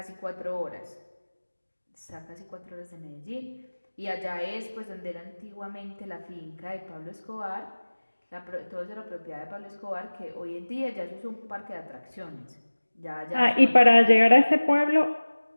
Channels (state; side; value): inverted; both; correlation -1.00